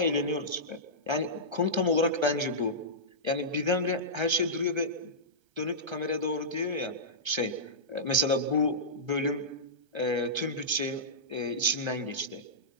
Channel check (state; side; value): late; left; 1.3 ms